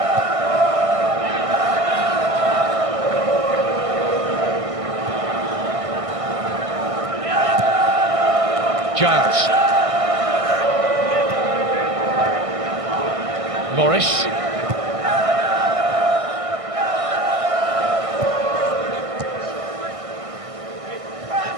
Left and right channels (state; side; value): late; left; 1.6 ms